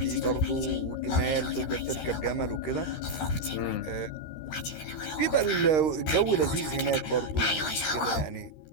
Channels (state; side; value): late; right; 13 ms